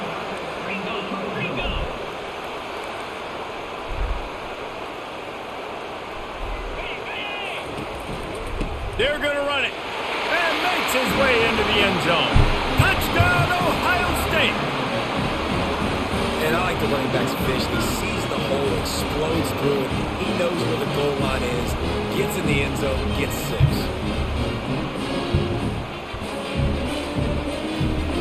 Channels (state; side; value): identical; both; correlation 1.00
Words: They're going to run it. And makes his way into the end zone. Touchdown, Ohio State. And I like the running back's vision. He sees the hole, explodes through it. He knows where the goal line is, gets in the end zone, gets 6.